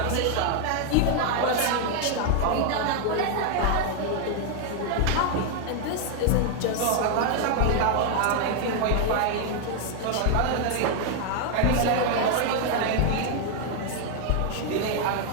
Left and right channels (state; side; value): different; both; correlation 0.00